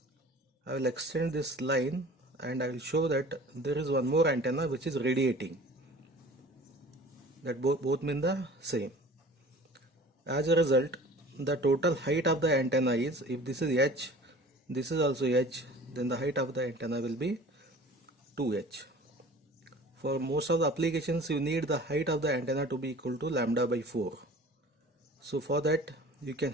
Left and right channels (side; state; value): both; normal; correlation 0.44